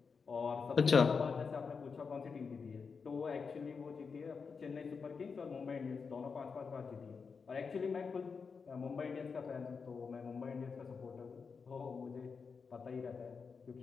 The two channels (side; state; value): right; quieter; 5.4 dB